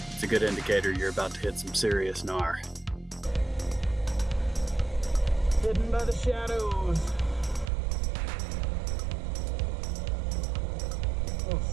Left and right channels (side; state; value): left; drops out; at 7.7 s